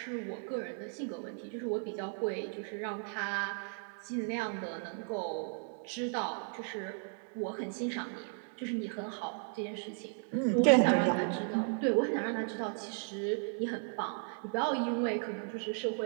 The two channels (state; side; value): silent; left; 54 dB below the other